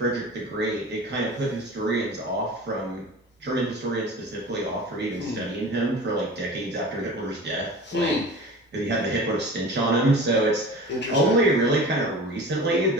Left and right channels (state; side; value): normal; both; correlation 0.37